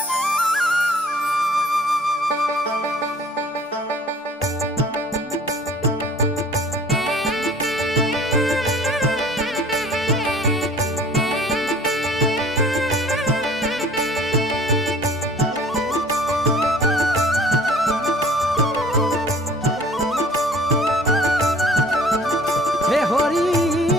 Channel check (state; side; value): normal; both; correlation 0.51